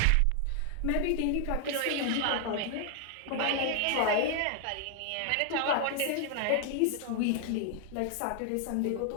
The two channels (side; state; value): both; different; correlation 0.00